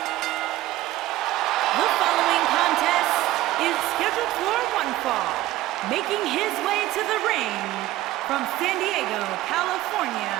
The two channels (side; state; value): left; quieter; 16.0 dB